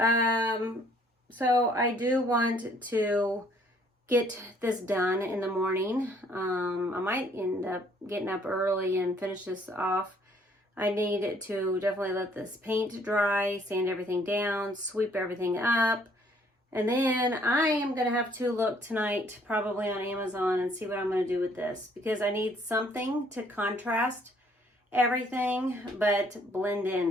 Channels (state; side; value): normal; both; correlation 0.62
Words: I do want to get this done in the morning. I might end up getting up early and finish this off. I need to definitely let this paint dry, sand everything down, sweep everything up. And then I am going to have to look tonight probably on Amazon and see what I'm going to do with this, because I need something to contrast everything but blend